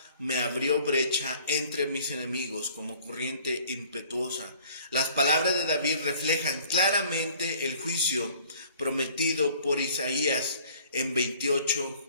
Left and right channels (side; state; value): both; inverted; correlation -0.54